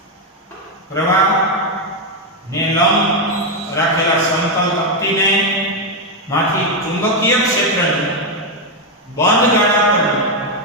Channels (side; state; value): both; normal; correlation 0.04